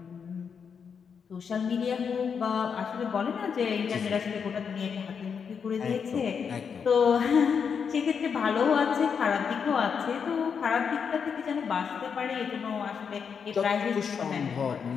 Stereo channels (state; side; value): quieter; right; 6.6 dB